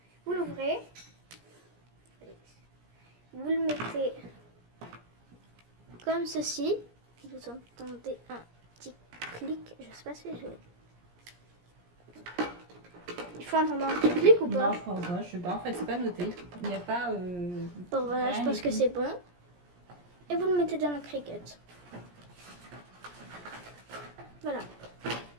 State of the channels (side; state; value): left; late; 17 ms